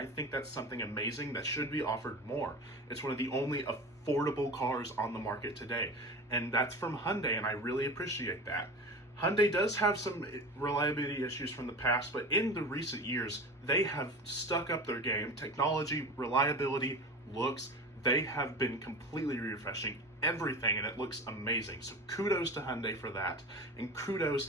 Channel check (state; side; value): normal; both; correlation 0.32